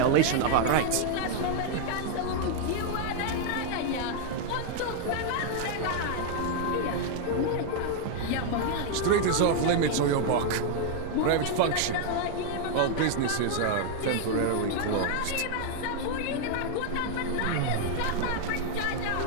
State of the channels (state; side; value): different; both; correlation 0.00